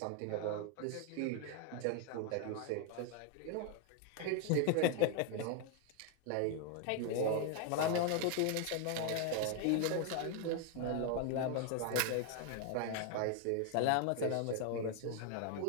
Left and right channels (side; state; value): both; different; correlation 0.01